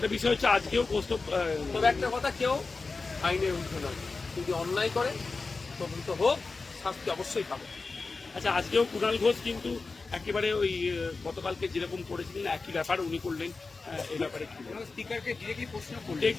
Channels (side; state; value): right; quieter; 4.0 dB